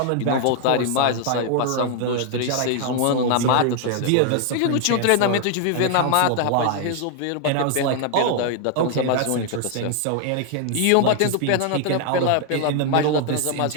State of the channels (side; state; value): both; different; correlation 0.00